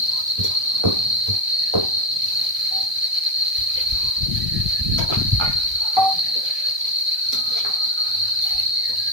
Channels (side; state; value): left; late; 1.2 ms